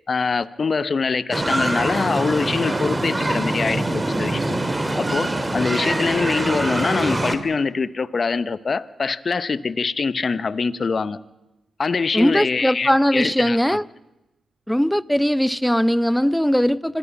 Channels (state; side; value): normal; both; correlation 0.95